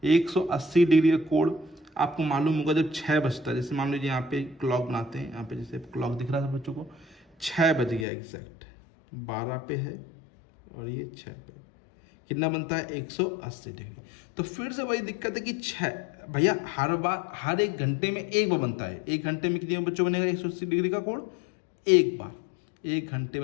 180 डिग्री का कोण आपको मालूम होगा, जब 6 बजता है, जैसे मान लीजिए यहाँ पे क्लॉक बनाते हैं, यहाँ पे जैसे क्लॉक दिख रहा था बच्चों को, 6 बज गया एग्जैक्ट, 12 पे है और ये 6 पे, कितना बनता है, 180 डिग्री। तो फिर से वही दिक्कत है कि 6 भैया हर बार, हर 1 घंटे में एक बार बनता है, 1 घंटे में कितने बच्चों बनेगा 180 डिग्री का कोण, एक बार, 1 घंटे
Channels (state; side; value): drops out; right; at 8.1 s